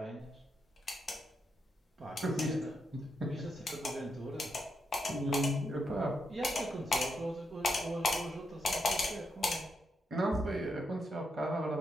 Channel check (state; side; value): normal; both; correlation 0.82